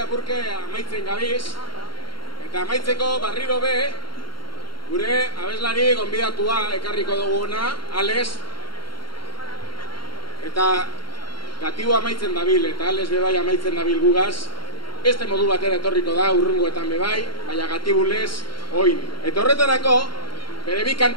amaitzen gabiz. Eta amaitzeko barriro be, gure abeslari gonbidatua ekarriko duguna, Ales. Eta gatibu amaitzen dabil, eta Ales bebai amaitzen dabil gugaz. Beste modu batera etorriko da, urrungoetan bebai, baina gatibulez, oin. Eta horretarako, bere bi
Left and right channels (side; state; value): right; late; 0.73 ms